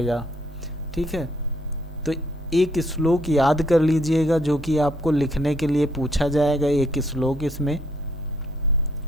ठीक है। तो एक श्लोक याद कर लीजिएगा जो कि आपको लिखने के लिए पूछा जाएगा। एक श्लोक इसमें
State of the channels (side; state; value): both; normal; correlation 0.69